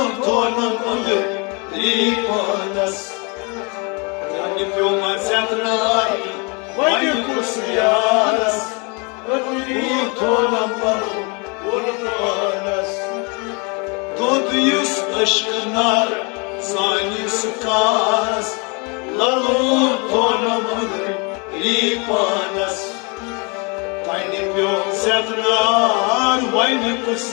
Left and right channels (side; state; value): right; quieter; 31.9 dB